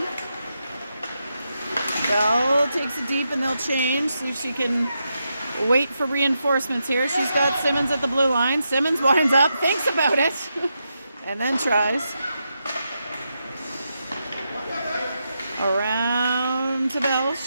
Bell takes it deep and they'll change. See if she can wait for reinforcements here. She's got Simmons at the blue line. Simmons winds up, thinks about it, and then tries. Around to Bell.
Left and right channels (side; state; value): both; inverted; correlation -0.85